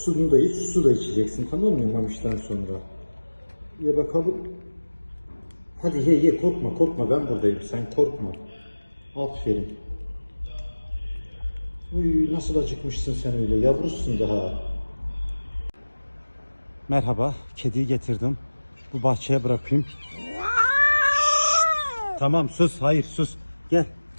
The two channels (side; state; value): both; inverted; correlation -1.00